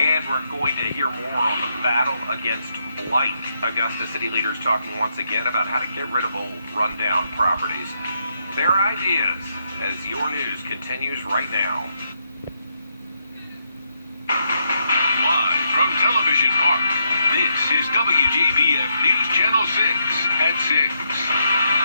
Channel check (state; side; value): inverted; both; correlation -0.79